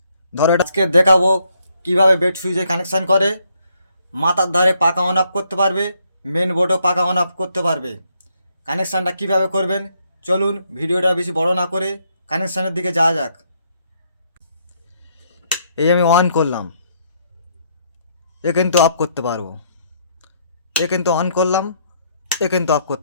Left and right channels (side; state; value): both; inverted; correlation -0.71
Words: ধরো এটা আজকে দেখাবো কিভাবে বেড সুইচে কানেকশান করে। মাথার ধারে পাকা অন অফ করতে পারবে, মেন বোর্ডও পাকা অন অফ করতে পারবে। কানেকশানটা কিভাবে করবেন চলুন, ভিডিওটা বেশি বড় না করে কানেকশানের দিকে যাওয়া যাক। এই আমি অন করলাম, এ কিন্তু অফ করতে পারবো। এ কিন্তু অন করলাম, এ কিন্তু অফ